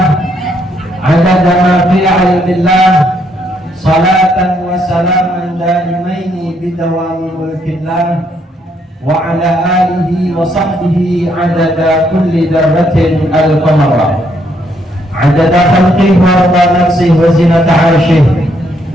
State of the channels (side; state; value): both; normal; correlation 0.73